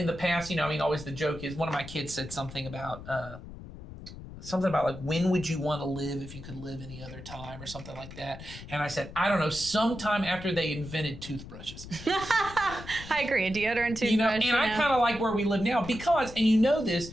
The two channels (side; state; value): left; noise; rumble, 14 dB below the sound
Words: the past, always the joke is, one of my kids said something about like, when would you want to live if you could live any other time, or something like that. And I said, I don't know, sometime after they invented toothbrushes. I agree. Deodorant, toothbrush. And I kind of like where we live now because, and